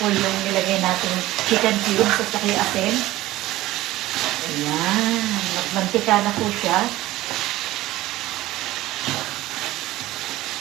yung nilagay natin chicken cubes at saka yung asin. Ayan, magmantika na po siya.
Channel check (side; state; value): left; quieter; 16.6 dB